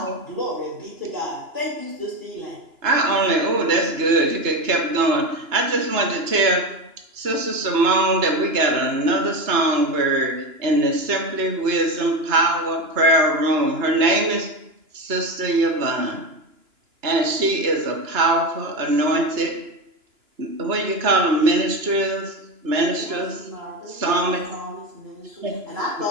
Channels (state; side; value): late; left; 2.9 ms